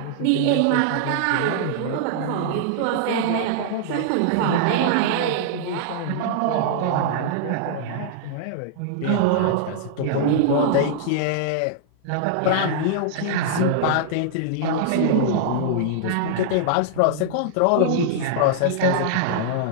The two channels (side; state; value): both; different; correlation -0.01